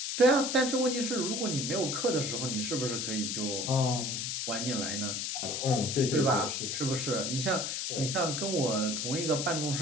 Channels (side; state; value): left; noise; hiss, 2 dB below the sound